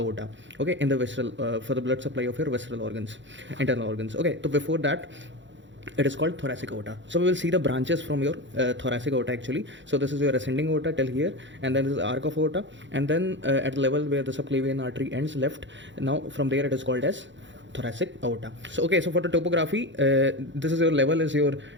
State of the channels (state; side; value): late; left; 0.54 ms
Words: okay, in the visceral for the blood supply of your visceral organs, internal organs. Okay, so before that it is called thoracic aorta. So we will see the branches from your thoracic aorta actually. So this is your ascending aorta till here, and then this is arc of aorta, and then at the level where the subclavian artery ends left, now from there it is called as thoracic aorta. So okay, so for the topography, this is your level is your